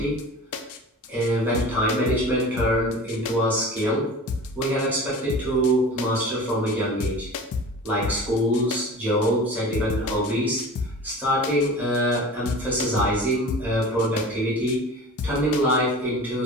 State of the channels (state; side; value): normal; both; correlation 0.37